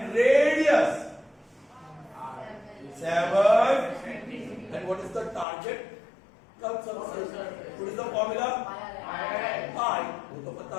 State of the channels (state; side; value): drops out; right; at 5.5 s